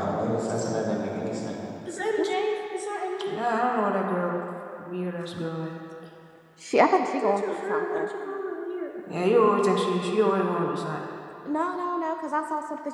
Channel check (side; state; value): both; identical; correlation 1.00